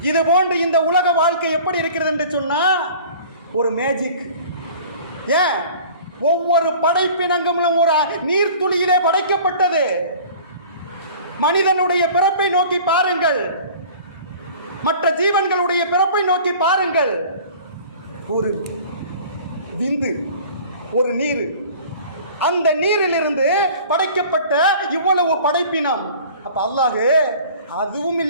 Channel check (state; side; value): inverted; both; correlation -0.45